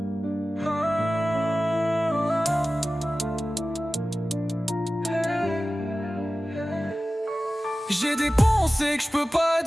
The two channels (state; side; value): normal; both; correlation 0.96